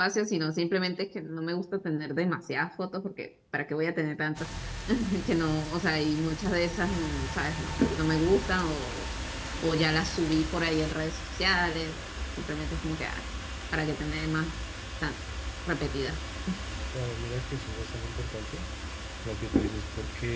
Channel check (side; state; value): both; identical; correlation 1.00